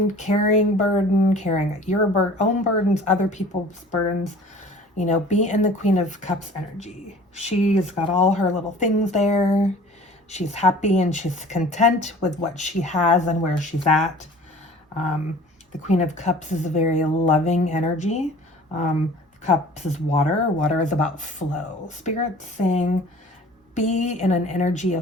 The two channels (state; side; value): normal; both; correlation 0.46